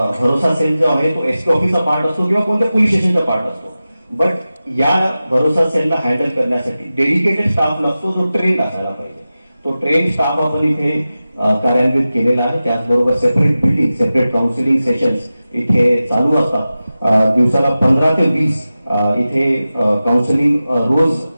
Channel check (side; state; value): both; inverted; correlation -0.95